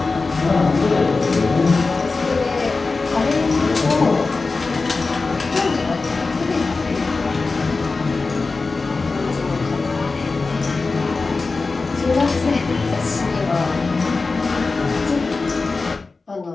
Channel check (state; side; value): quieter; right; 3.9 dB